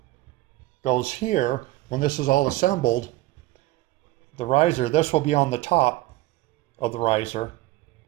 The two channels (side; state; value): left; quieter; 17.8 dB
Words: goes here. When this is all assembled, the riser, this will be on the top of the riser,